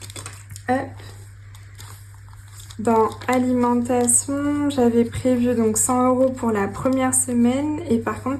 hop. Dans alimentation, j'avais prévu donc 100 € pour la première semaine. Et par contre,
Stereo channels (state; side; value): identical; both; correlation 1.00